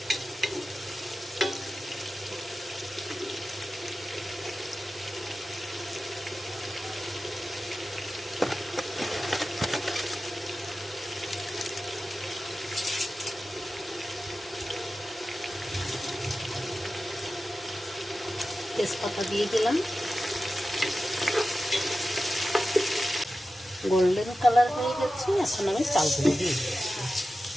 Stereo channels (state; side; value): normal; both; correlation 0.94